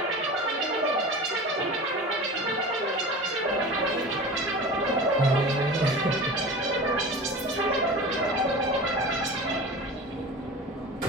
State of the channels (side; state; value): both; normal; correlation 0.34